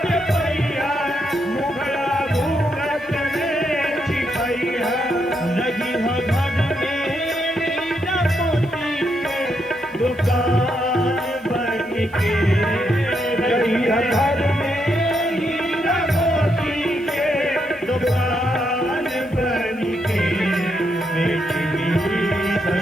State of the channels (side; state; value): left; noise; hiss, 30 dB below the sound